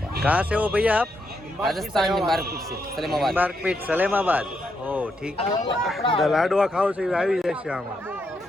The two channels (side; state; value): both; normal; correlation 0.80